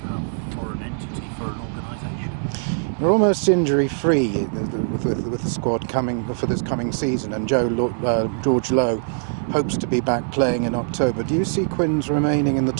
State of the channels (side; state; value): left; silent; 64 dB below the other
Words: have for an entity, for an organisation. We're almost injury-free with the squad coming for this coming season, and George Lowe hopes to be back playing in October. Do you see Quins remaining in the